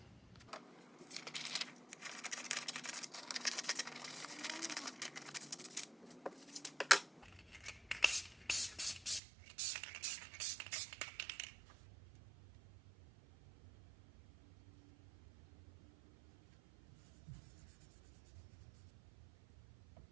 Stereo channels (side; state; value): left; drops out; at 9.2 s